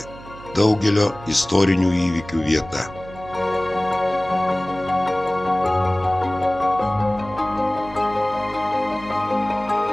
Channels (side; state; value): right; noise; hum, 17 dB below the sound